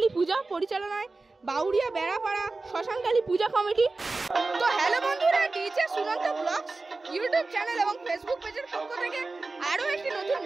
পূজা পরিচালনায় বাউরিয়া বেড়াপাড়া শ্মশানকালী পূজা কমিটি। তো হ্যালো বন্ধুরা, DJ Sunanta blogs YouTube channel এবং ফেসবুক পেজের পক্ষ থেকে আরও একটি নতুন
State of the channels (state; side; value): quieter; left; 3.5 dB